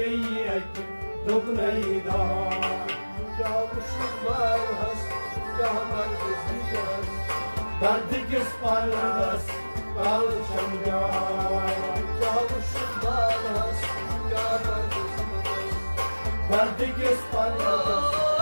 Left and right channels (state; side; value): inverted; both; correlation -1.00